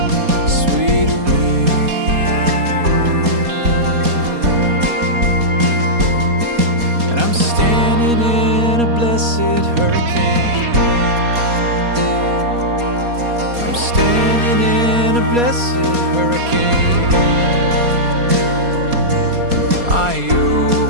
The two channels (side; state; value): left; late; 4.2 ms